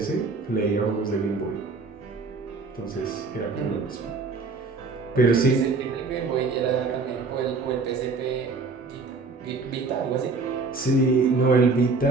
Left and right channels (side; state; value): left; quieter; 4.0 dB